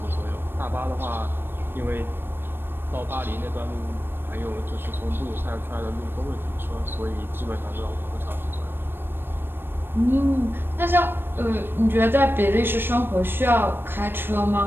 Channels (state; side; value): late; left; 0.099 ms